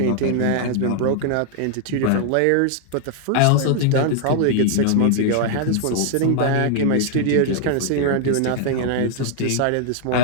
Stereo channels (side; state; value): both; different; correlation 0.00